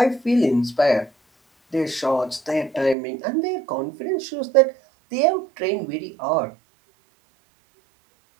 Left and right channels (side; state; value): left; drops out; at 3.0 s